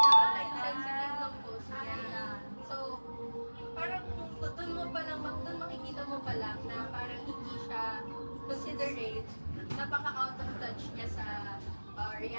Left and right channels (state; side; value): inverted; both; correlation -1.00